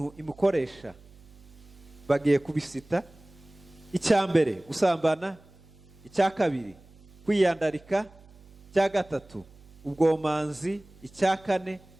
imukoresha. Bagiye kubisita. Icya mbere gusambana, icya kabiri kwiyandarika, icya gatatu ubwomanzi, icya kane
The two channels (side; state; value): right; noise; hum, 25 dB below the sound